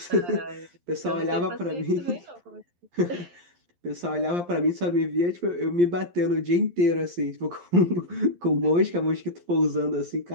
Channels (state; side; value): late; left; 11 ms